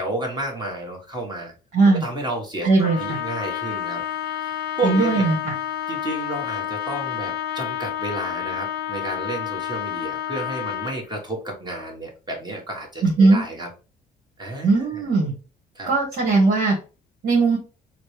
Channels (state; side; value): normal; both; correlation 0.57